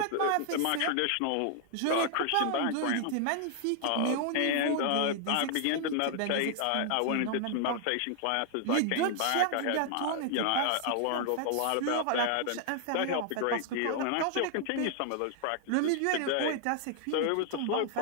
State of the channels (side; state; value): both; different; correlation 0.00